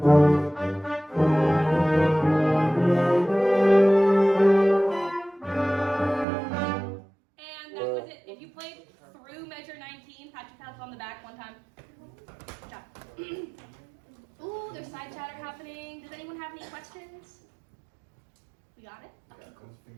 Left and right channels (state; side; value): drops out; left; at 6.2 s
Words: On the back one time. Good job. Ooh, there's side chatter happening. Does anyone have any questions? We got it? Okay, cool.